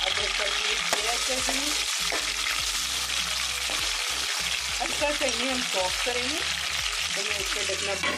अदरक का पेस्ट ऐड कर दूंगी। अच्छा से इन्हें हम सॉफ्ट करेंगे, तो मैं इसको ढकना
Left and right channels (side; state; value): both; identical; correlation 1.00